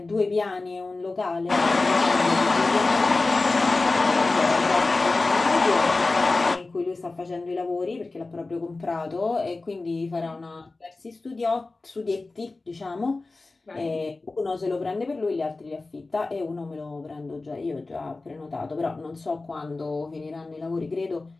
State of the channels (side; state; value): right; quieter; 3.4 dB